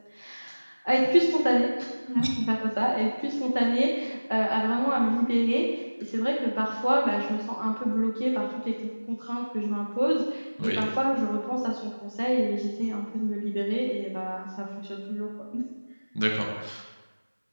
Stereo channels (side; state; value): both; inverted; correlation -1.00